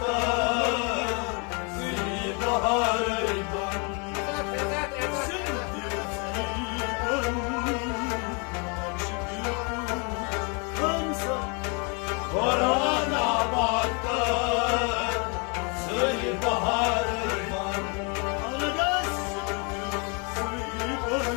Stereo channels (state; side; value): quieter; right; 33.8 dB